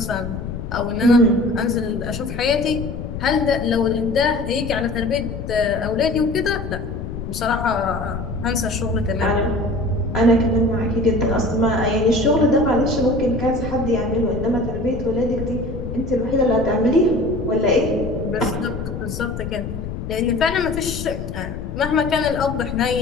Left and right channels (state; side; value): noise; left; rumble, 7 dB below the sound